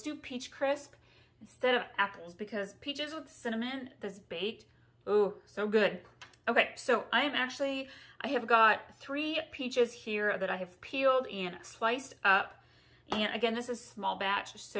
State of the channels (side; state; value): both; identical; correlation 1.00